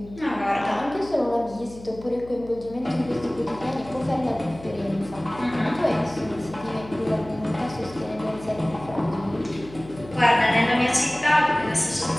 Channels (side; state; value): left; noise; hum, 17 dB below the sound